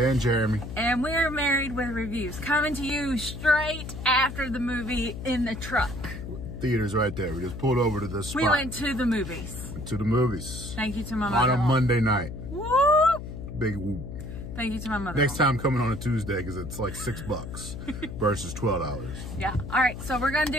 Jeremy, and we're Married with Reviews, coming to you straight after the movie in the truck. Theater's right there. We just pulled over to this spot. We went to the movies. Went to the movies. Thank you to my On mother. a Monday night. Whoop! Big whoop. Thank you to my mother. Next time coming on a Tuesday because it's like $6 versus $12. Yeah. All right. So we're gonna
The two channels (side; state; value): left; noise; hum, 9 dB below the sound